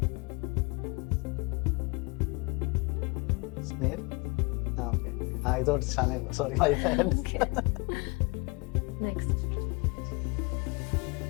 Snail? Okay. I thought Shanel. Sorry, my bad. Okay. Next.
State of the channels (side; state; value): right; quieter; 28.6 dB